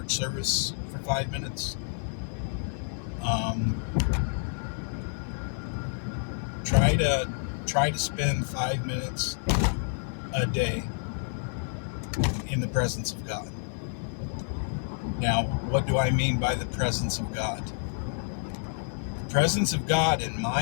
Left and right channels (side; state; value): right; silent; digital silence